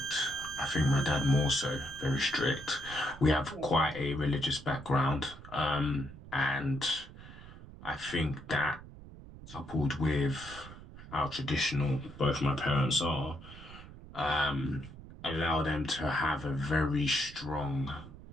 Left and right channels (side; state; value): right; noise; rumble, 16 dB below the sound